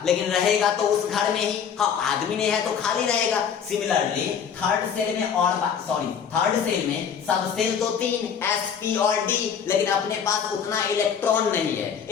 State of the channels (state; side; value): quieter; right; 7.5 dB